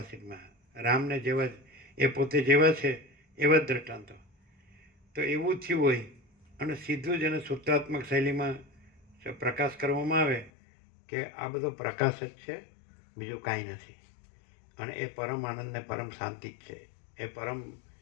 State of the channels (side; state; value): right; drops out; at 10.5 s